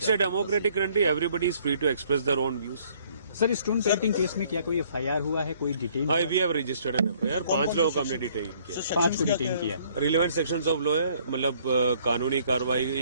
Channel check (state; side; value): inverted; both; correlation -0.61